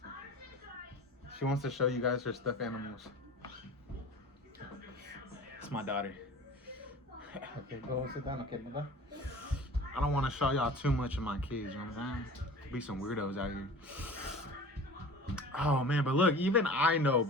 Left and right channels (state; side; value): normal; both; correlation 0.40